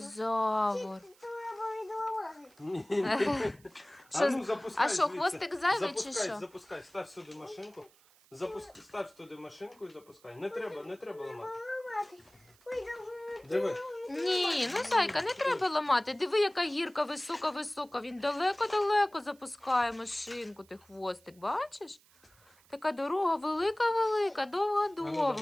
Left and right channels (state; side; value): noise; right; hiss, 29 dB below the sound